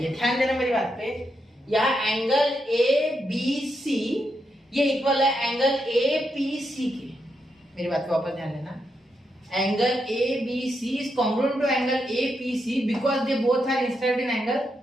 है, ध्यान देना मेरी बात पे। यहाँ एंगल ए बी सी ये इक्वल है एंगल ए पी सी के, मेरी बात को वापस ध्यान देना। Angle A B C is congruent to angle A P C because they both are inscribed in angle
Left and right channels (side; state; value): both; normal; correlation 0.83